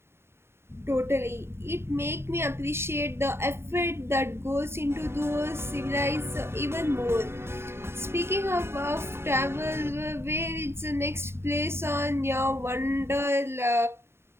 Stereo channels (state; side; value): late; left; 0.12 ms